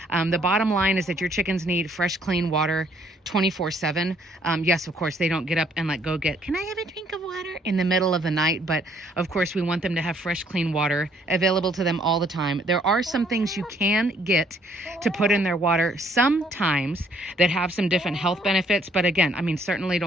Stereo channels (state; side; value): normal; both; correlation 0.65